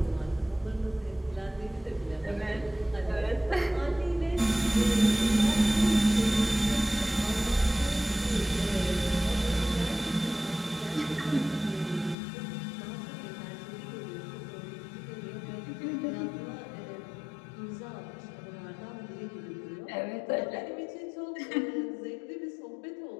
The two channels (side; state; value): right; drops out; at 12.2 s